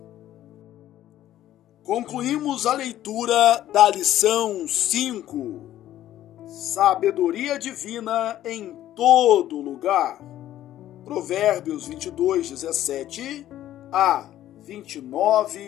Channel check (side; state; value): right; quieter; 12.9 dB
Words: Concluímos a leitura da lição 5, Sabedoria Divina em todo lugar. Provérbios 22, 17 a